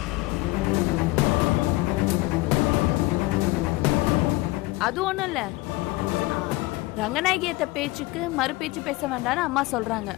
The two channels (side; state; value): right; quieter; 20.5 dB